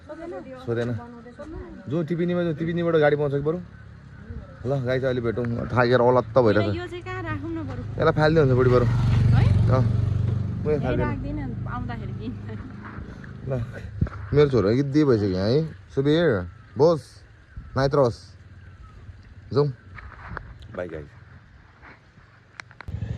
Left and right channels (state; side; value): identical; both; correlation 1.00